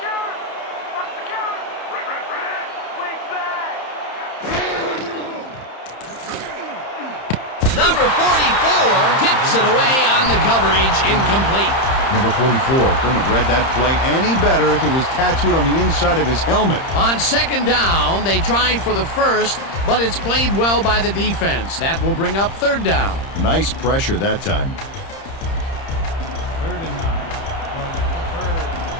What's the counter? Red. Wings back. Number 44 tips it away on the coverage, incomplete. Number 44 couldn't have read that play any better if it was tattooed on the inside of his helmet. On second down, they try for the first, but it's played well by the defense. That will bring up third down. Nice pressure that time. 3rd and 9 from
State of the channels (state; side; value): late; right; 30 ms